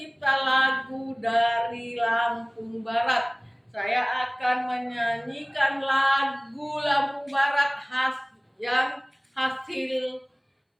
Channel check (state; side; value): identical; both; correlation 1.00